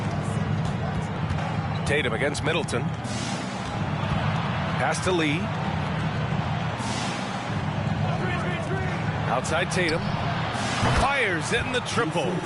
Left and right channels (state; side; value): identical; both; correlation 1.00